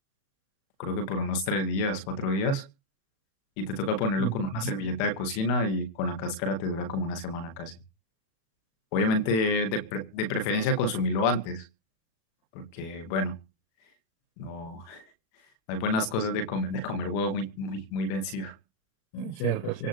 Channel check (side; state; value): right; late; 36 ms